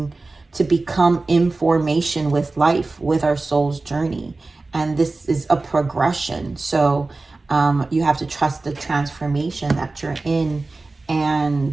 to become information with life, with our soul's journey. And this is a progression. So you have to trust the transformation that you're in,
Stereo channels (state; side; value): quieter; left; 3.4 dB